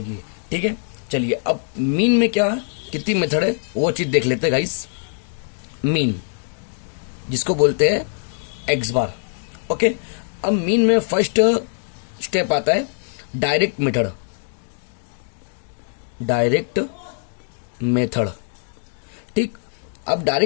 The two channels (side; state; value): right; silent; digital silence